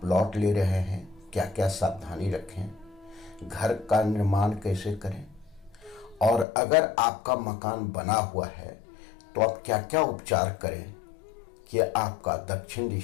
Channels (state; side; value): drops out; right; at 6.5 s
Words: प्लॉट ले रहे हैं, क्या क्या सावधानी रखें, घर का निर्माण कैसे करें, और अगर आपका मकान बना हुआ है तो आप क्या क्या उपचार करें कि आपका दक्षिण